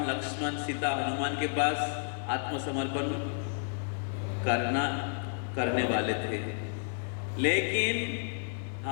लक्ष्मण सीता हनुमान के पास आत्मसमर्पण करने वाले थे, लेकिन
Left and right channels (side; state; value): right; silent; 57 dB below the other